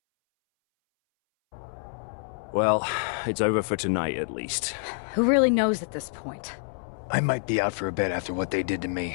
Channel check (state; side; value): silent; right; 60 dB below the other